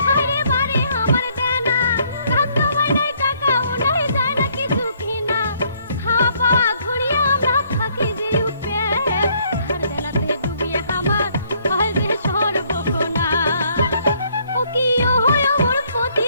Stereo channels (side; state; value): both; inverted; correlation -0.67